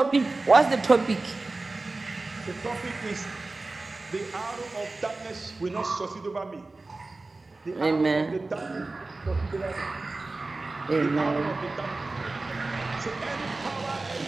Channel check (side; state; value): left; quieter; 3.3 dB